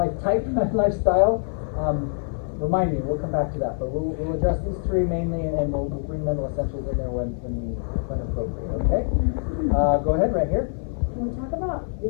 type, lifestyle. Remind me, we'll come back to that. But we'll address these three mainly, and we'll bring mental essentials in there when appropriate. Okay? Go ahead, right here. Can we talk about the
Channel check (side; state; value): right; silent; 59 dB below the other